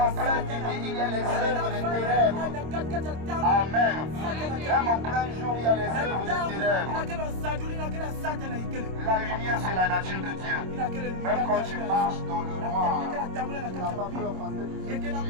plein nuit, il y a les œuvres des ténèbres. Amen. Même en plein jour, il y a les œuvres des ténèbres. La lumière, c'est la nature de Dieu. Même quand tu marches dans le noir, tu n'as pas peur parce que tu es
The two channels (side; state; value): left; late; 26 ms